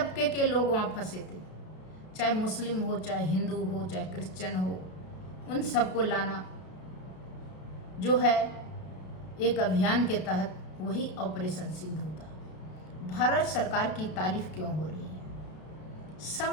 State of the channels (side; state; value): right; late; 32 ms